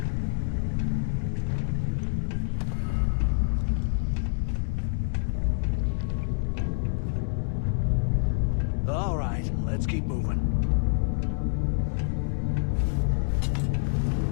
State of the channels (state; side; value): silent; right; digital silence